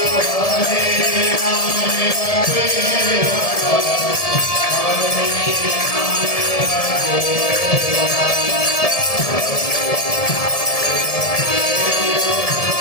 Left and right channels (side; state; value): right; late; 1.7 ms